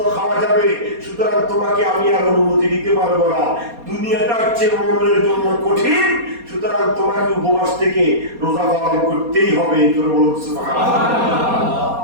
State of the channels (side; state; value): left; late; 4.2 ms